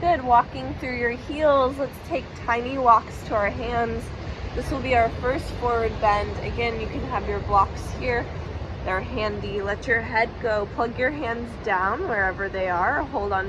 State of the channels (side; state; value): both; identical; correlation 1.00